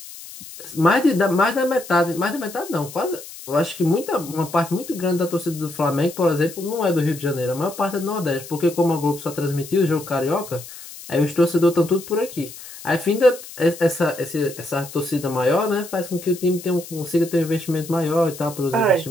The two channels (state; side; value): noise; left; hiss, 15 dB below the sound